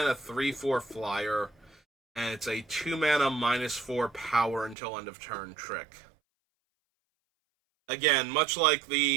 3/4 flyer, and it's a 2-mana -4 power until end of turn trick. Again, much like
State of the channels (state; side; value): drops out; left; at 4.8 s